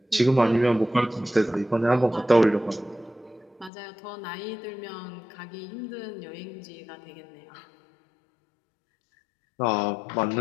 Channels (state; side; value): drops out; right; at 3.7 s